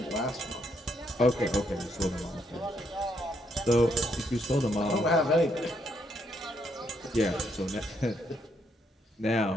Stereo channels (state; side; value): normal; both; correlation 0.75